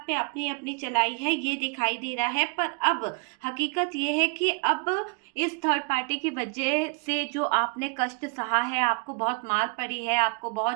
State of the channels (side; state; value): left; quieter; 34.3 dB